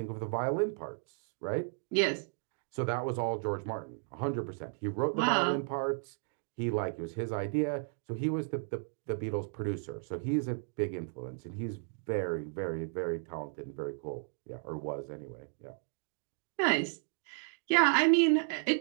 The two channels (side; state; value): left; silent; 55 dB below the other